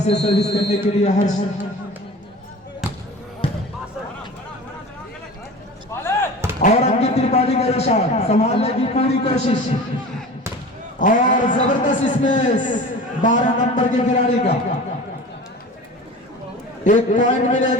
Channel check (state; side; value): normal; both; correlation 0.37